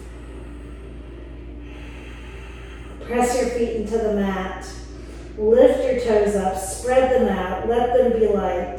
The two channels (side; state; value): both; identical; correlation 1.00